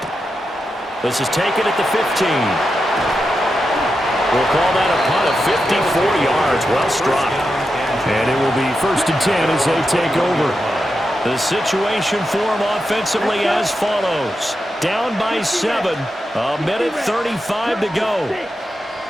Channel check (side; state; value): both; normal; correlation 0.88